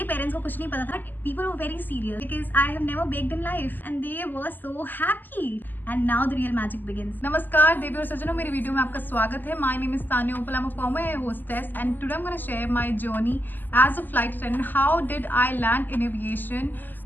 पेरेंट्स को कुछ नहीं पता था, but people were very serious because I have never baked in life and they were so happy and now the real magic begins. नमस्कार देवी और सज्जनों, मेरी वीडियो में आपका स्वागत है। My name is Tanya Uppal, I am a former air hostess and today I am gonna share my journey as a flight attendant. How did I land in aviation?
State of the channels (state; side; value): late; right; 0.088 ms